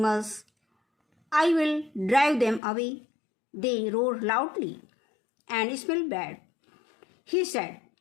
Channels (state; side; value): drops out; right; at 2.6 s